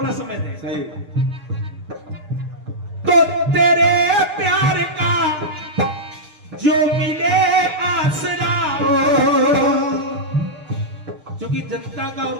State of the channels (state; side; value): late; left; 6.7 ms